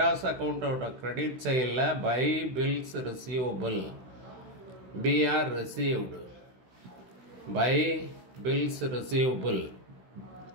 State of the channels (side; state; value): left; late; 16 ms